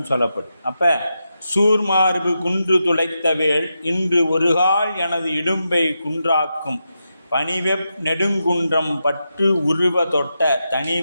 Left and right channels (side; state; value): both; inverted; correlation -0.87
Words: சொல்லப்படும். அப்போ சூர்மார்பு குன்று துளைத்தவேள் இன்று ஒருகால் எனது இடும்பை குன்றாக்கும் பனிவெப் நெடுங்குன்றம் பற்று உருவ தொட்ட